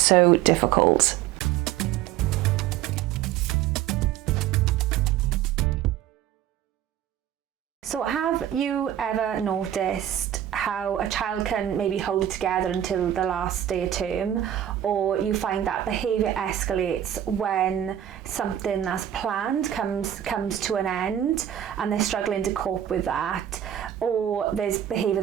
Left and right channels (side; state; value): left; quieter; 11.0 dB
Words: difficult. So have you ever noticed how a child can maybe hold it together until the last day of term, or you find that behaviour escalates when something that's planned comes to an end and they're struggling to cope with that, or there's behaviour